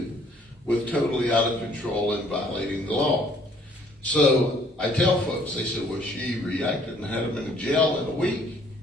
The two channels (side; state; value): both; normal; correlation 0.61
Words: with totally out of control and violating the law. So I tell folks, they said, well, she reacted and had him in jail in a week.